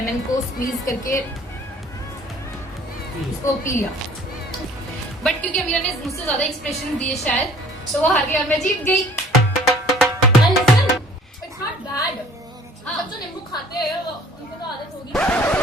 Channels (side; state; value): both; normal; correlation 0.53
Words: को स्क्वीज करके उसको पी लिया। बट क्योंकि अमीरा ने मुझसे ज्यादा एक्सप्रेशन दिए शायद, तो वो हार गई और मैं जीत गई। It's not bad. हाँ। सब जो नींबू खाते हैं वो उनको तो आदत होगी।